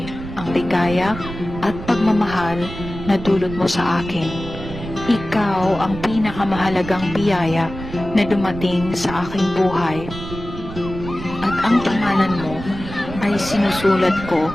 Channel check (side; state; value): right; noise; rumble, 11 dB below the sound